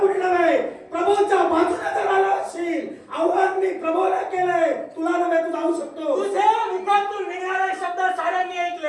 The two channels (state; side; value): identical; both; correlation 1.00